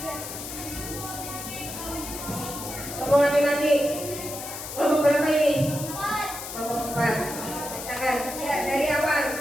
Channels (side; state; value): left; noise; hiss, 9 dB below the sound